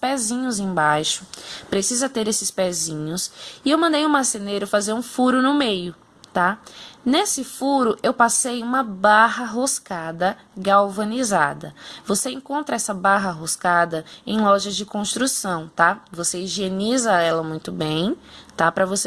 embaixo. Precisa ter esses pezinhos. E eu mandei o marceneiro fazer um furo no meio, tá? Nesse furo, eu passei uma barra roscada galvanizada. Você encontra essa barra roscada em lojas de construção, tá? Você higieniza ela muito bem, tá? Para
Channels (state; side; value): identical; both; correlation 1.00